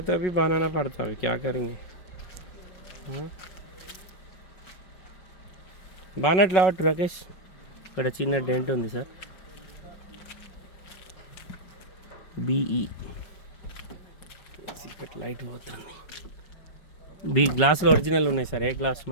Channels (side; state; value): right; late; 5.3 ms